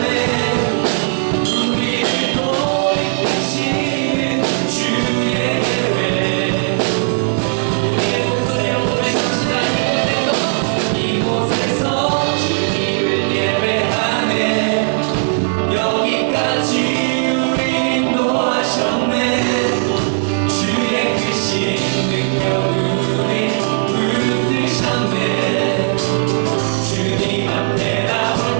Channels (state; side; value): silent; left; digital silence